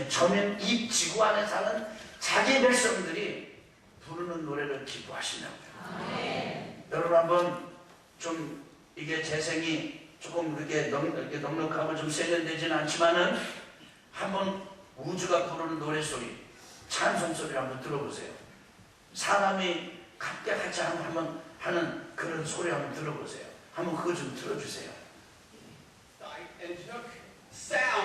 점인 이 지구 안에 사는 자기 백성들이 부르는 노래를 기뻐하시냐고요. 여러분, 한번 좀 이게 재생이 조금 이렇게 넉넉하고 좀 세련되지는 않지만은 한번 우주가 부르는 노래소리, 찬송소리를 한번 들어보세요. 사람이 합격하지 않고 한번 하는 그런 소리 한번 들어보세요. 한번 그거 좀 들어주세요. And took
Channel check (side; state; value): both; identical; correlation 1.00